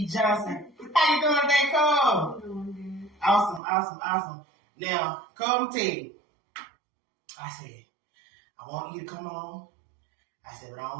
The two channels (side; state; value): left; drops out; at 3.6 s